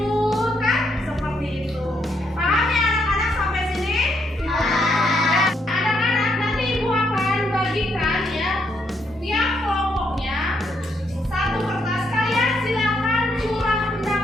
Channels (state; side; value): normal; both; correlation 0.76